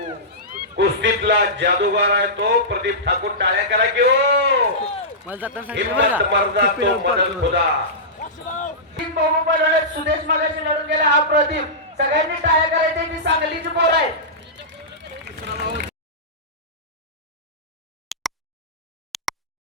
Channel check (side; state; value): both; normal; correlation -0.15